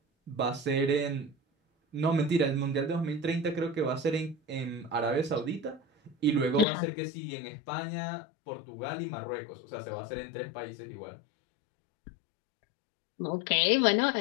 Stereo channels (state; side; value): drops out; right; at 6.7 s